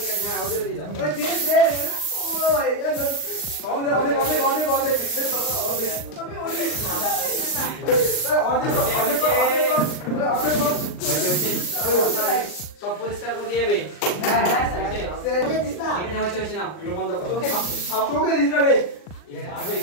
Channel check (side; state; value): right; late; 39 ms